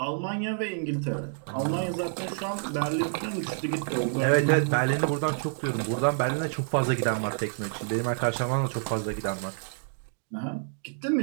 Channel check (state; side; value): silent; left; digital silence